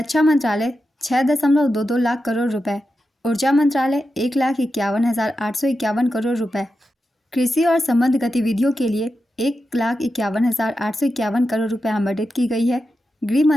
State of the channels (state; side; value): normal; both; correlation 0.89